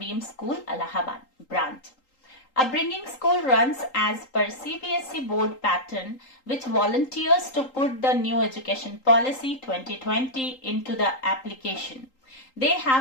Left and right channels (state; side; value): late; right; 3.8 ms